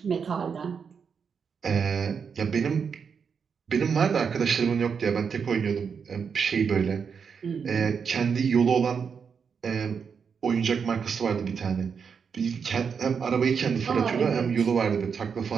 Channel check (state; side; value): quieter; left; 6.3 dB